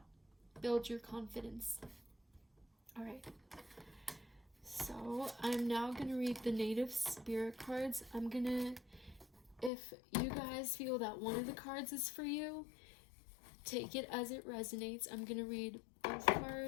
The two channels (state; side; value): drops out; right; at 9.7 s